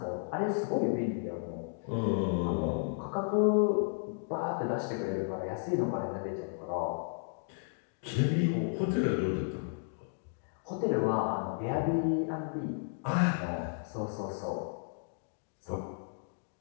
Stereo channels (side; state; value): right; silent; digital silence